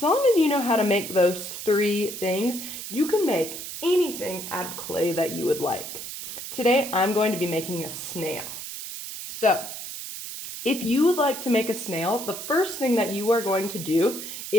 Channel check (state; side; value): noise; right; hiss, 8 dB below the sound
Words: long as you know how to make those three things, you can make anything out of clay that you would like. Today, I'm going to be making a snail. So, if you would like to make a snail, the first thing that you are going to do